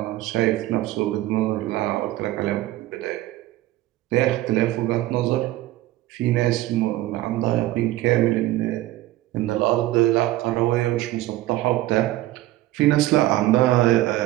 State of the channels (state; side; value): quieter; left; 16.2 dB